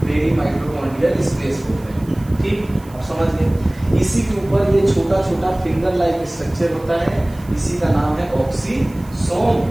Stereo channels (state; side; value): noise; right; hiss, 25 dB below the sound